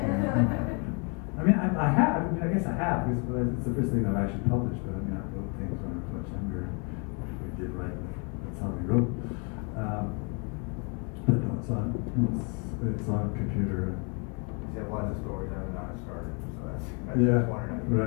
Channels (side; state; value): right; quieter; 35.7 dB